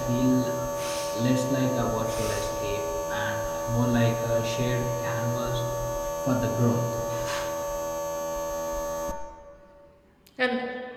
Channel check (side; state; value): both; identical; correlation 1.00